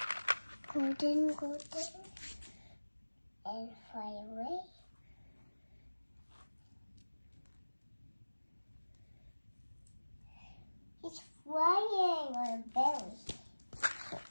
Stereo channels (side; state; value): both; inverted; correlation -1.00